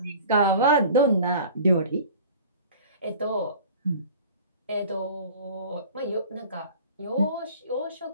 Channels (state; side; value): inverted; both; correlation -0.43